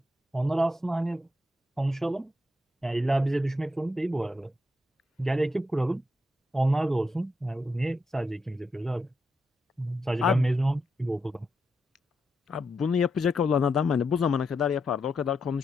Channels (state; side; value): normal; both; correlation 0.83